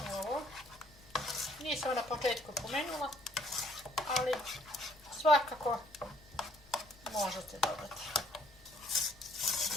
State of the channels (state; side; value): noise; left; rumble, 24 dB below the sound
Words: Nisam na početku pomenula, ali svakako možete dodati.